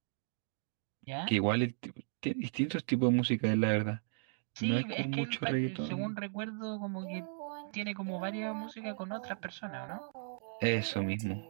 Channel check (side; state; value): left; silent; digital silence